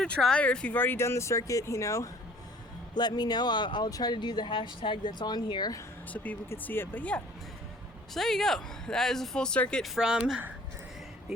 a try, or if you've already done the circuit, you know, let me know. I'll try to do the hashtag that's on here so people could see it. But yeah, so there you go. That is a full circuit from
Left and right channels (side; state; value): both; normal; correlation 0.53